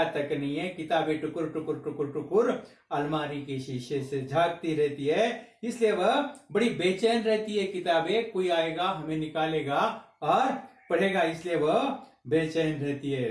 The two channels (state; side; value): identical; both; correlation 1.00